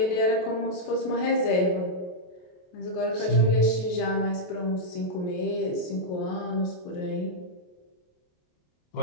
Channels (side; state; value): right; late; 28 ms